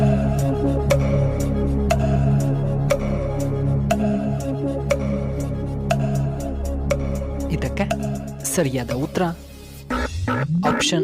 ಇದಕ್ಕೆ ಸರಿಯಾದ ಉತ್ತರ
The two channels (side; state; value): both; identical; correlation 1.00